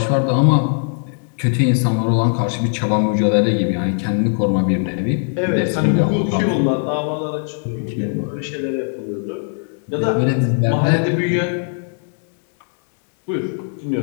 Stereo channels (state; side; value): silent; right; 66 dB below the other